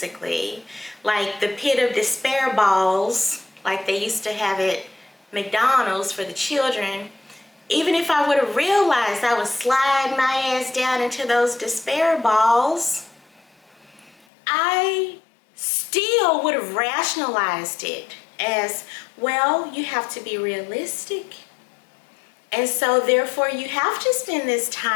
like the pit of despair balls, like they used to have at McDonald's for the children. Even if I would have realized I would slide my ass down into those despair balls, I still would have rationalized it as, well, you have to be realistic. And so therefore you have to spend this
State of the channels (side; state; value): right; drops out; at 14.2 s